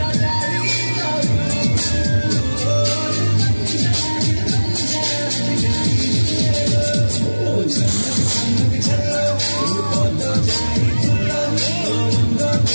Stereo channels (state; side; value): inverted; both; correlation -1.00